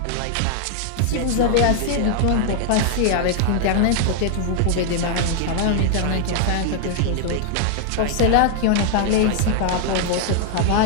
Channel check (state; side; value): different; both; correlation 0.00